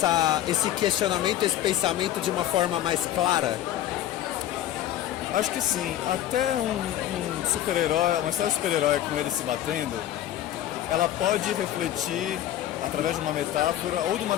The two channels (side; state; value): right; quieter; 12.4 dB